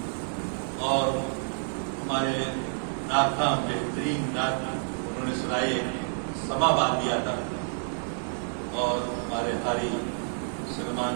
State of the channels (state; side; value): silent; left; digital silence